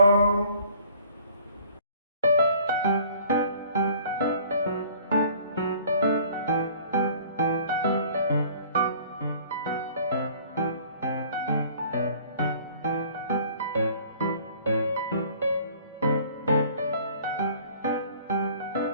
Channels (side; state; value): both; inverted; correlation -0.53